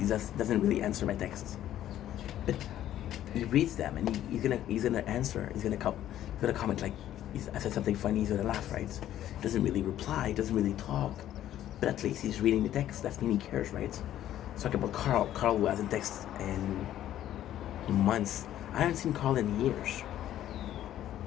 just doesn't really answer my texts, but he reads them and he's gonna answer. He's gonna comment like I said something funny. He's gonna laugh, right? Doesn't really reply. Doesn't really talk, but at least he's reading the text. That means he cares, right? Talking about Carl. Carl who hasn't texted in months. I haven't seen Carl in years.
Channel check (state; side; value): quieter; right; 12.2 dB